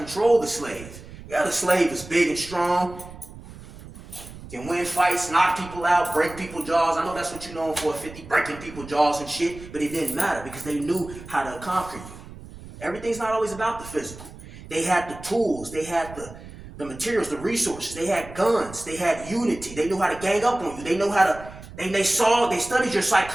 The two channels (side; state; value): right; noise; rumble, 16 dB below the sound